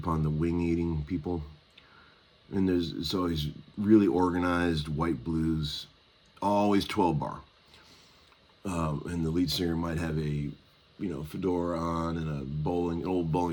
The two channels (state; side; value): identical; both; correlation 1.00